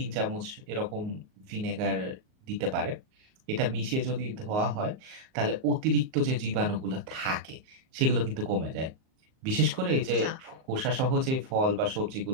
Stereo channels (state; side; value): late; left; 38 ms